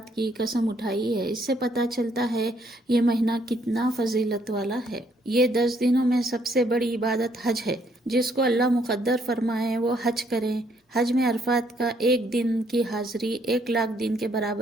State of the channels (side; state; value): both; normal; correlation 0.69